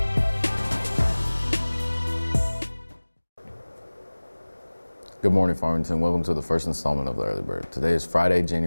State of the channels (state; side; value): inverted; both; correlation -1.00